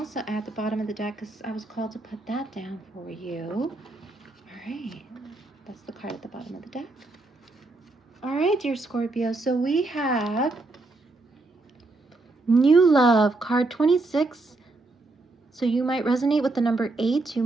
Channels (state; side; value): quieter; left; 3.1 dB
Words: add the bottom of the deck because I was called to put that down for you. All right, that's the card at the bottom of the deck. All right, dear Scorpio, so we have New Love, card 26. So you might resonate with the number 8. You